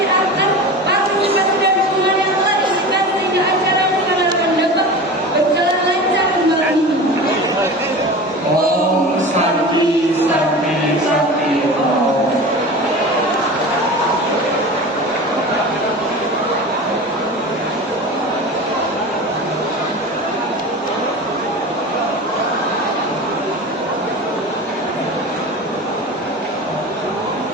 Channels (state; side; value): normal; both; correlation 0.32